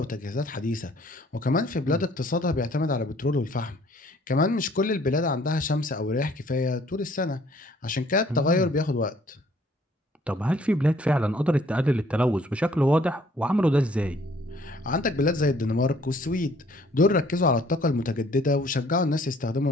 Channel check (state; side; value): normal; both; correlation 0.60